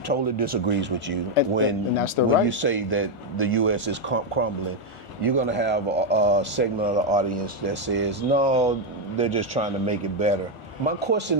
totally disagrees with you when you say that the U.S. is crumbling. You're gonna have a segment of the audience that says, no, they're just trying to make it better. My question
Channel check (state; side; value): late; right; 1.4 ms